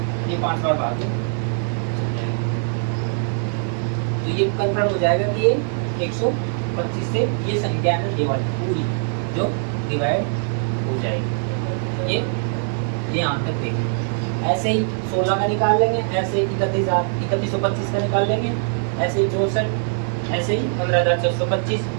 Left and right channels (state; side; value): silent; left; digital silence